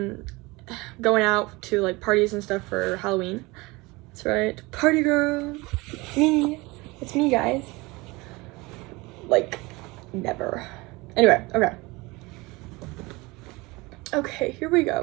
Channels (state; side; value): quieter; left; 23.4 dB